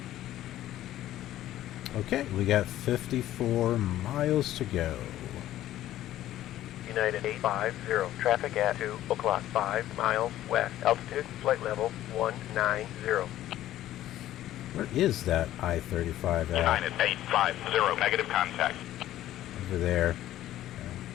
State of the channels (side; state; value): right; quieter; 13.5 dB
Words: Okay, we got 54 miles to go. United 850. Traffic at 2 o'clock. 5 miles west. Altitude, flight level 190. Where is that I-35 at? United 850, negative contact. Over there.